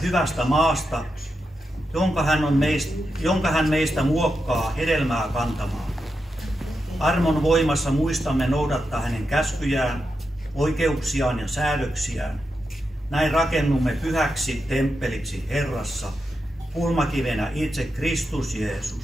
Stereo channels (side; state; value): both; normal; correlation 0.87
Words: maasta, jonka hän meistä muokkaa hedelmää kantamaan. Armon voimassa muistamme noudattaa hänen käskyjään, oikeuksiaan ja säädöksiään. Näin rakennumme pyhäksi temppeliksi Herrassa, kulmakivenä itse Kristus